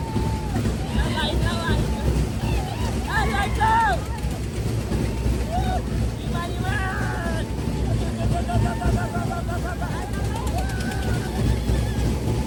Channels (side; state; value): both; identical; correlation 1.00